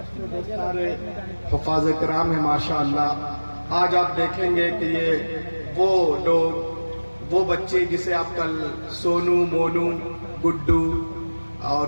سارے حفاظ کرام ہیں ماشاءاللہ۔ آج آپ دیکھیں گے کہ یہ وہ لوگ، وہ بچے جسے آپ کل سونو، مونو، گڈو اور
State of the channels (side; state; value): both; inverted; correlation -1.00